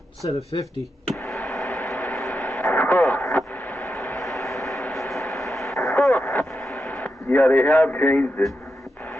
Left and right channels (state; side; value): normal; both; correlation 0.87